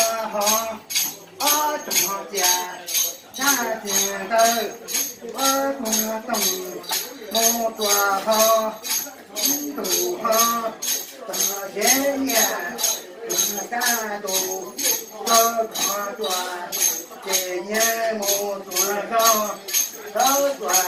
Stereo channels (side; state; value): both; identical; correlation 1.00